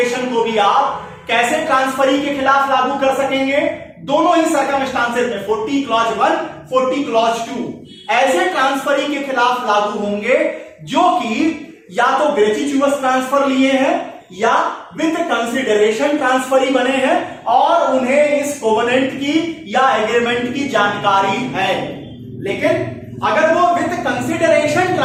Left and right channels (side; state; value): both; identical; correlation 1.00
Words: को भी आप कैसे ट्रांसफरी के खिलाफ लागू कर सकेंगे? दोनों ही सर्कमस्टांसेस में 40 क्लॉज 1, 40 क्लॉज 2 ऐसे ट्रांसफरी के खिलाफ लागू होंगे जो कि या तो ग्रेच्युटस ट्रांसफर लिए हैं या विद कंसिडरेशन ट्रांसफरी बने हैं और उन्हें इस कोवेनेंट की या एग्रीमेंट की जानकारी है। लेकिन अगर वो विद कंसिडरेशन